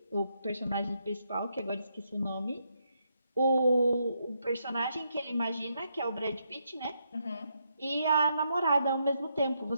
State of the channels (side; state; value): both; inverted; correlation -0.79